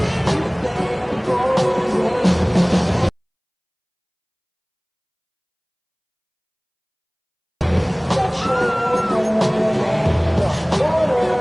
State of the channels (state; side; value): identical; both; correlation 1.00